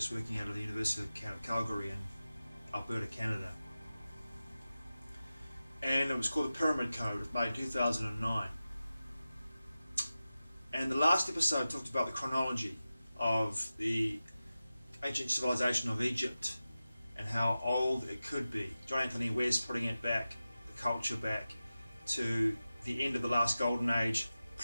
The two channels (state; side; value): inverted; both; correlation -0.94